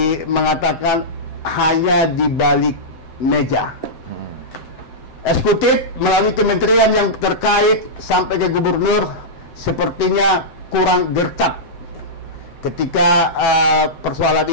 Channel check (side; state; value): right; late; 7.8 ms